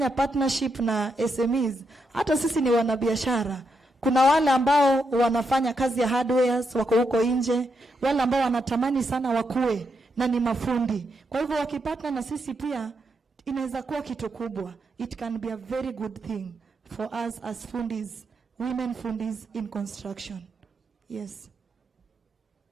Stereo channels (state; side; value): normal; both; correlation 0.82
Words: partnership na SMEs. Hata sisi ni wanabiashara. Kuna wale ambao wanafanya kazi ya hardwares wako huko nje, wale ambao wanatamani sana wakue na ni mafundi. Kwa hivyo wakipatana na sisi pia inaweza kuwa kitu kubwa. It can be a very good thing for us as fundis, women fundis in construction. Yes.